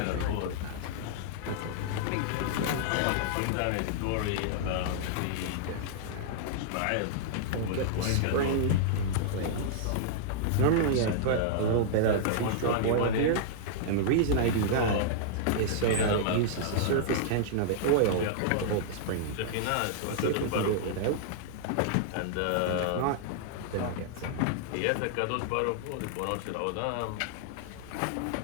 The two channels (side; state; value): both; different; correlation -0.01